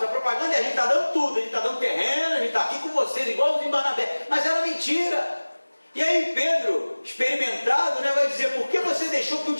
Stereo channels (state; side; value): inverted; both; correlation -1.00